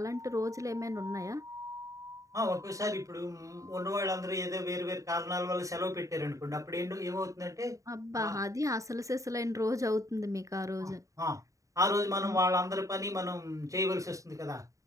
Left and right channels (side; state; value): left; late; 0.16 ms